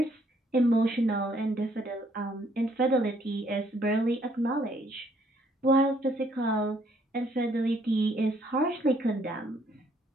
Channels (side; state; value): both; normal; correlation 0.67